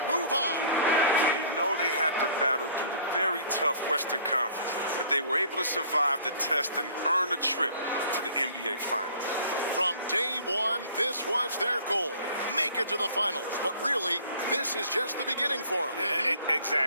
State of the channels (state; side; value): inverted; both; correlation -0.52